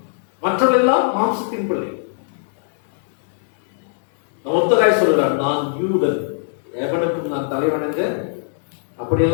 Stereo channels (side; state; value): right; silent; digital silence